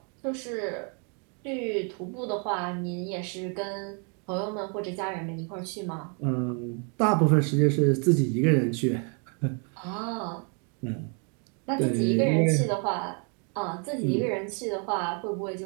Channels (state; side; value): quieter; left; 38.2 dB